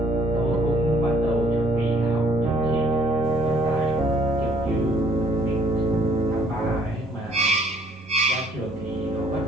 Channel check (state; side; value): normal; both; correlation 0.61